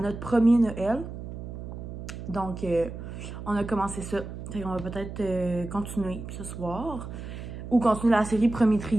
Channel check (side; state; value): right; noise; hum, 9 dB below the sound